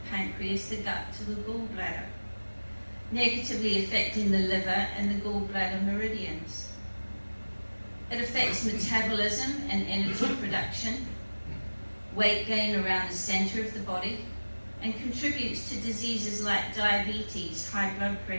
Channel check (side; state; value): both; inverted; correlation -1.00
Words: pancreas, the gut to the gallbladder, negatively affecting the liver and the gallbladder meridians. It affects metabolism and energy production, weight gain around the center of the body, and contributes to diseases like diabetes, high blood